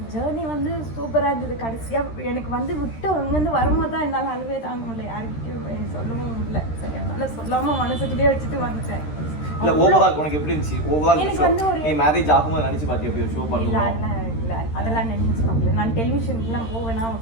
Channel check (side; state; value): right; late; 13 ms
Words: ஜேர்னி வந்து சூப்பராக இருந்தது. கடைசியாக எனக்கு வந்து விட்டு அங்கேருந்து வரும்போது தான் என்னால் அழுவே தாங்க முடியல, யார்கிட்டையும் சொல்லவும் முடியல. சரி அதனால் சொல்லாமல் மனசுக்குள்ளேயே வச்சுட்டு வந்துட்டேன். இல்லை ஓவரால் உனக்கு எப்படி இருந்துச்சு? ஓவரால் எனக்கு வந்து ஒரு நீ மேரேஜ் ஆகும்போது நினச்சி பார்த்தியா எப்படி ஷோ பண்ணலாம்? இல்லை அதெல்லாம் நினச்சி பார்க்கல. நான் டெலிவிஷனுக்குலாம் போவேன்னா அவன்